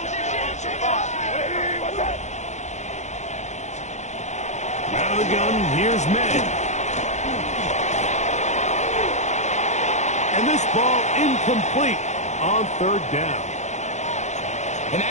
what's that? Out of the gun, here's May. And this ball incomplete on third down. And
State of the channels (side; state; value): right; late; 0.33 ms